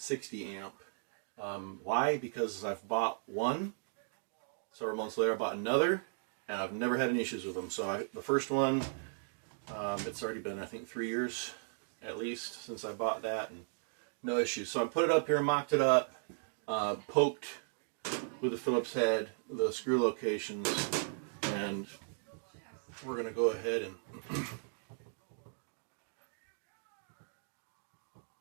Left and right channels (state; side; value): silent; left; digital silence